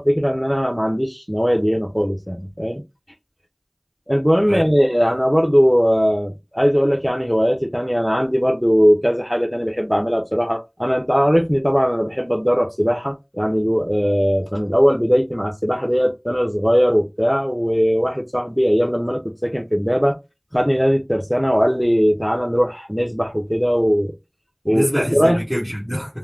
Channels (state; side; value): identical; both; correlation 1.00